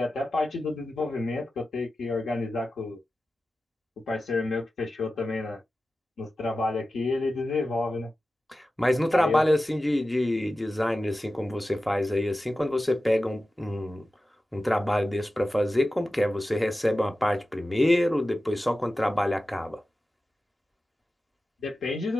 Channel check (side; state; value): both; normal; correlation 0.94